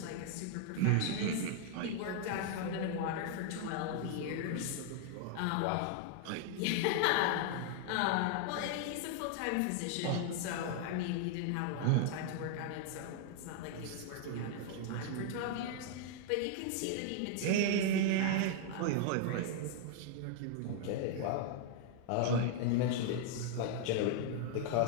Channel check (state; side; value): different; both; correlation 0.00